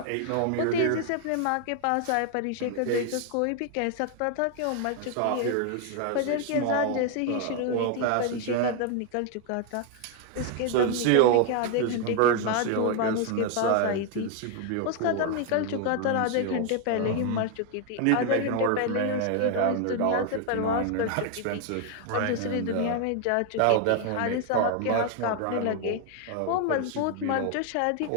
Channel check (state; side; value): different; both; correlation 0.01